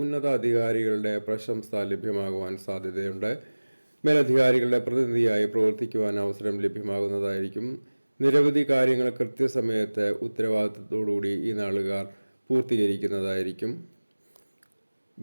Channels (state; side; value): inverted; both; correlation -1.00